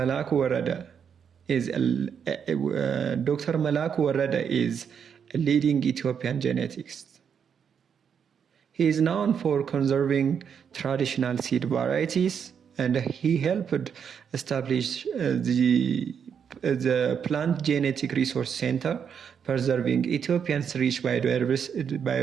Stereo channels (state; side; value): quieter; left; 7.4 dB